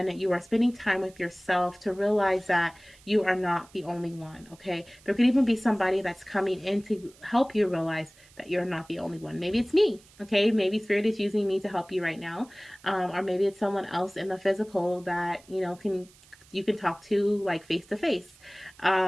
you are spending time with yourself to realize that you are not the only one. Okay, there could even be somebody that's coming in to help you realize that you're not the only one. Maybe it's me. Okay, maybe Spirit is using me to help you right now, or maybe it's someone else in the physical that you can talk to like face to face.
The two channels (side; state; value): right; noise; hiss, 26 dB below the sound